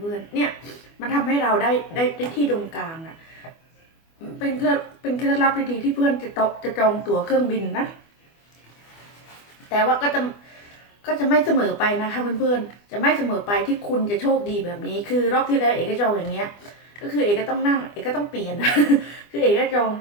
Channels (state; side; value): late; right; 24 ms